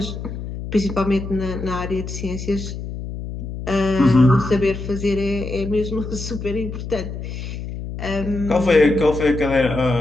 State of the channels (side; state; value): left; noise; hum, 8 dB below the sound